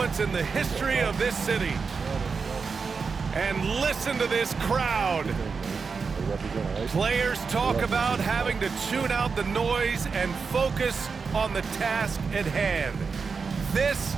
in the history of this city. And listen to this crowd. Players talk about having to tune out the noise and focus on the task at hand. This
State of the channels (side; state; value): left; quieter; 5.1 dB